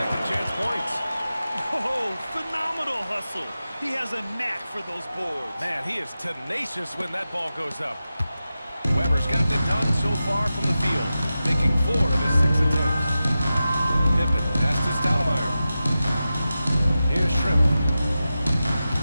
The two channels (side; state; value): both; inverted; correlation -0.93